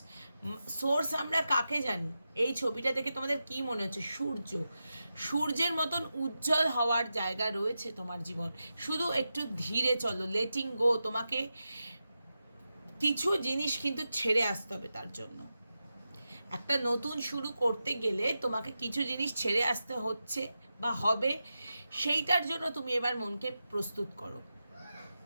সোর্স আমরা কাকে জানি, এই ছবিটা দেখে তোমাদের কি মনে হচ্ছে? সূর্যের মতন উজ্জ্বল হওয়ার জায়গা রয়েছে তোমার জীবন। শুধু একটু ধীরে চলো, লেটিং গো। তোমাকে কিছু জিনিস কিন্তু ছেড়ে আসতে হবে, তার জন্য একটা নতুন শুরু করতে গেলে তোমাকে কিছু জিনিস ছেড়ে আসতে হচ্ছে বা হবে, সেইটার জন্য তুমি এবার মনকে প্রস্তুত করো।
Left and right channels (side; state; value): both; inverted; correlation -0.90